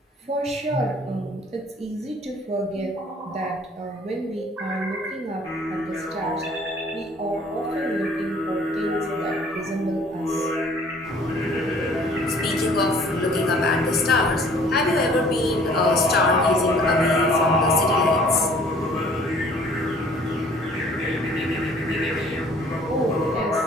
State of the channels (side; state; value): both; normal; correlation 0.54